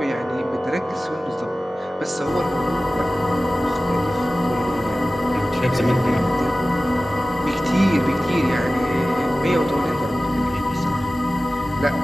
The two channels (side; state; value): both; normal; correlation 0.96